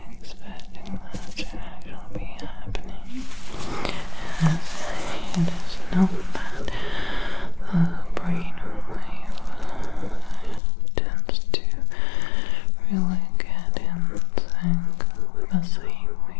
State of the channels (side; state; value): right; drops out; at 10.6 s